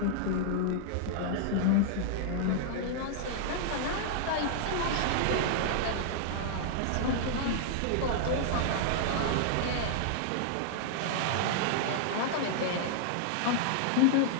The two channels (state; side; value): different; both; correlation -0.01